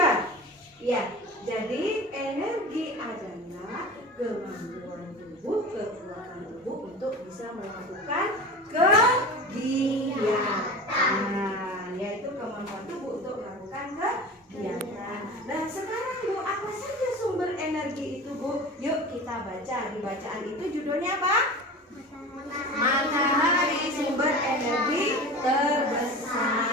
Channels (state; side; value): normal; both; correlation 0.34